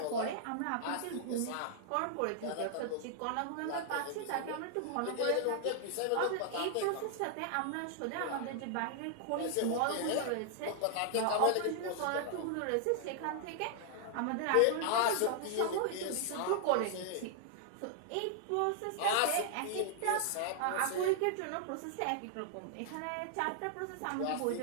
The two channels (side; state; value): both; different; correlation 0.00